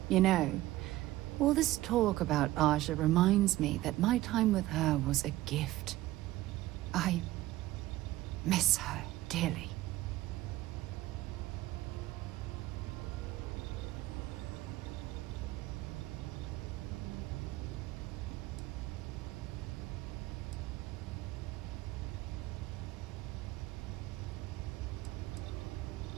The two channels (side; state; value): left; quieter; 16.6 dB